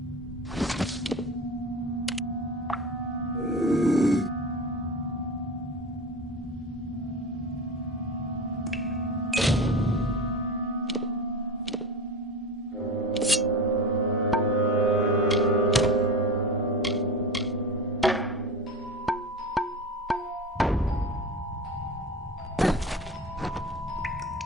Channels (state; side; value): normal; both; correlation 0.29